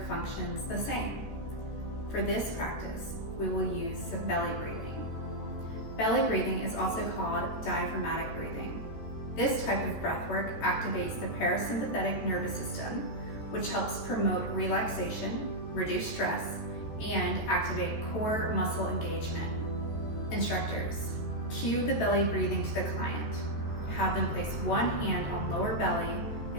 functions the same. For this practice, we will use some belly breathing. Belly breathing is also called diaphragmatic breathing. This type of breath work activates the parasympathetic nervous system, which helps promote relaxation, reduce stress, and activate core muscle engagement. Instructors, cue the belly breathing to the client. Have them place one hand on lower belly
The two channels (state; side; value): late; right; 14 ms